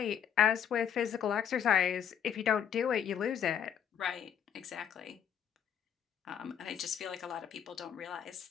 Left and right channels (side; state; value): right; quieter; 8.6 dB